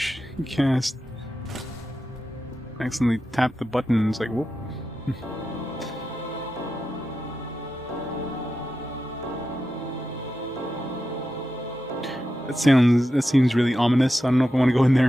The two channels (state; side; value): normal; both; correlation 0.90